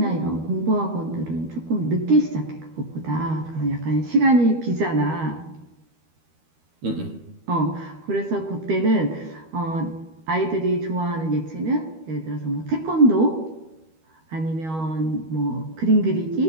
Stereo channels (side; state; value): left; late; 13 ms